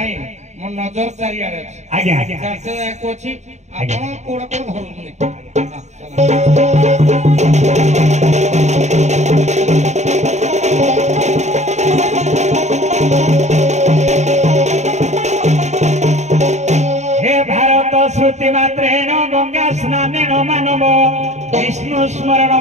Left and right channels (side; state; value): left; late; 0.33 ms